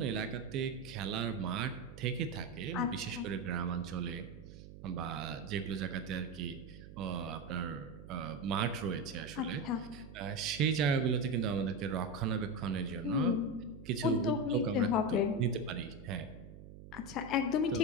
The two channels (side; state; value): right; noise; hum, 15 dB below the sound